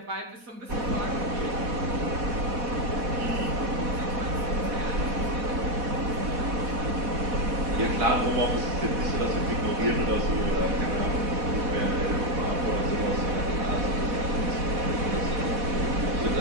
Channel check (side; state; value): left; late; 4.1 ms